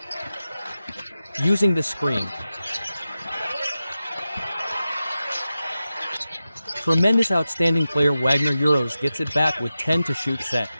Using the screen. Tremendous outstanding player Wagner Euros gets it back with 10 to shoot set.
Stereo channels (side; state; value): both; inverted; correlation -0.92